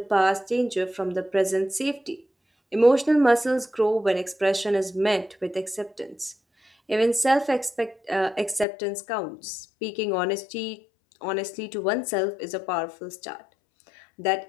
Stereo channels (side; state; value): right; drops out; at 8.7 s